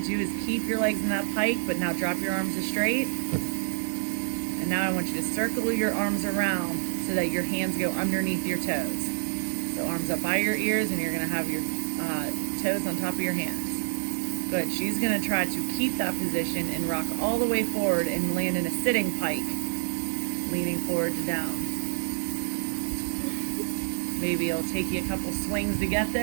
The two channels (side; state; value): left; silent; digital silence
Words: do is keep your legs in that pike, but now drop your arms to straight. And now I want you to circle your arms around so that your hands go underneath your toes. So arms up by your ears, and you're gonna have your toes on top of your hands. Good. She's gonna try to keep that position and rock all the way forward and land in a sitting pike, leaning forward to down. Maybe it'll take you a couple swings to get